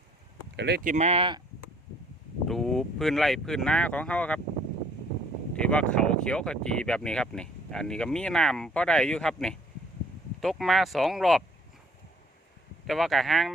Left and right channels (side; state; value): both; normal; correlation 0.59